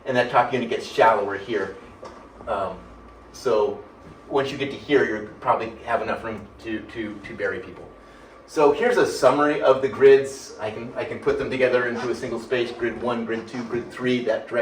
and that top unit gets shallower here. So once you get to here, you probably have enough room to bury people. So here's a summary of the grids. I can put them together into a single space, grid 1, grid 2, grid 3, that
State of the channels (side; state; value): both; identical; correlation 1.00